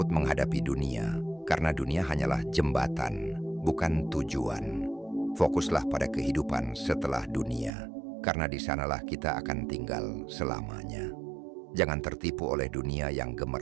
menghadapi dunia, karena dunia hanyalah jembatan, bukan tujuan. Fokuslah pada kehidupan setelah dunia, karena di sanalah kita akan tinggal selamanya. Jangan tertipu oleh dunia yang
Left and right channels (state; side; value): drops out; left; at 7.7 s